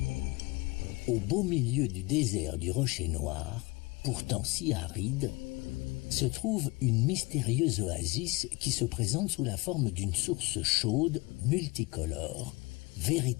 Au beau milieu du désert du Rocher Noir, pourtant si aride, se trouve une mystérieuse oasis qui se présente sous la forme d'une source chaude, multicolore,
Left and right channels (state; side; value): quieter; right; 24.8 dB